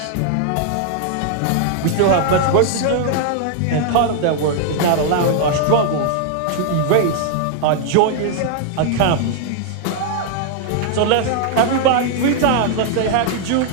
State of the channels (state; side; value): different; both; correlation 0.00